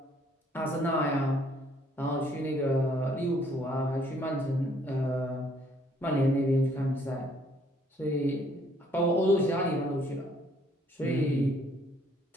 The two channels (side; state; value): both; normal; correlation 0.64